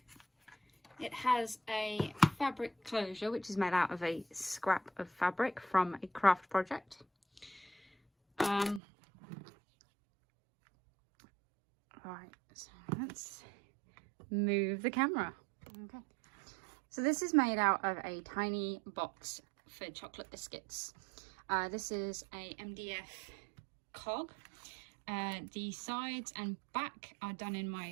It has a fabric closure which is made out of a scrap of fabric from a craft project. Right, so let's move the camera. Okay, so this is made out of a tiny box for chocolate biscuits. This is a MDF cog. The sides and back are done in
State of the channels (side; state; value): left; drops out; at 8.8 s